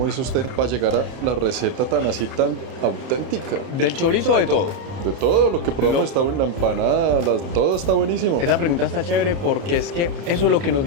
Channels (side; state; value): left; late; 30 ms